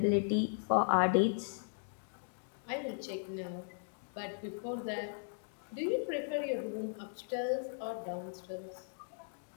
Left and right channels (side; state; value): right; silent; digital silence